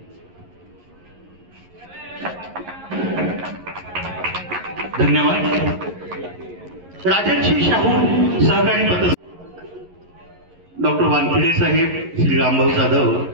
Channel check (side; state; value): left; late; 11 ms